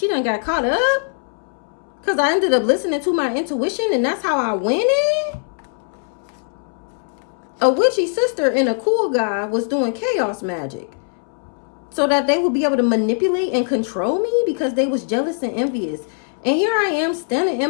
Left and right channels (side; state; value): right; silent; 65 dB below the other